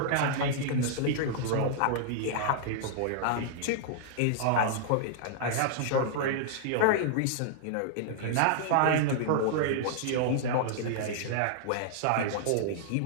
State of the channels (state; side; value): different; both; correlation -0.01